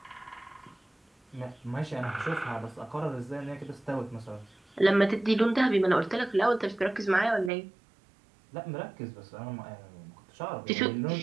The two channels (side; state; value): left; drops out; at 7.5 s